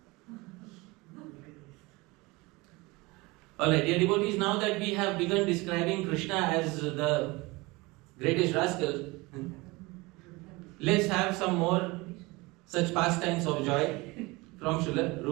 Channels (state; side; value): quieter; left; 23.6 dB